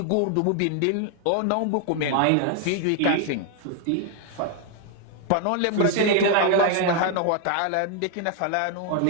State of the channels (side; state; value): both; different; correlation 0.00